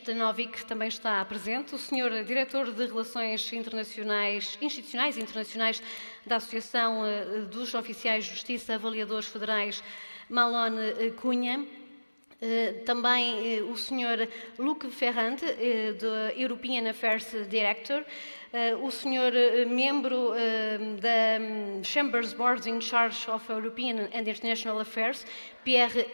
também está presente, o Sr. Diretor de Relações Institucionais e Internacionais da Associação dos Oficiais de Justiça Avaliadores Federais, Malone Cunha, também o Sr. Luc Ferrand, do European Affairs Director, o Sr. Membro da Chambers Board in Charge of European and International Affairs, Pierre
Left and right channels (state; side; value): inverted; both; correlation -1.00